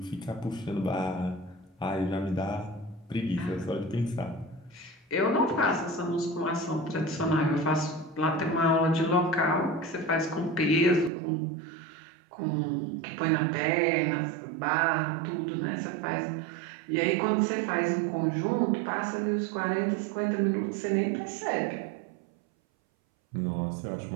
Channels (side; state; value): left; drops out; at 11.1 s